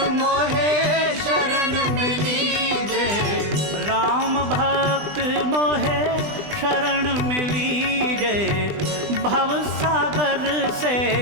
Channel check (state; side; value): late; left; 20 ms